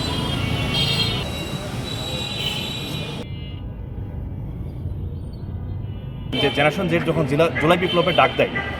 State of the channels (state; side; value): identical; both; correlation 1.00